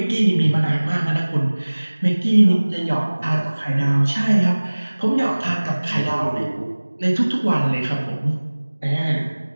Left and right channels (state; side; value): inverted; both; correlation -1.00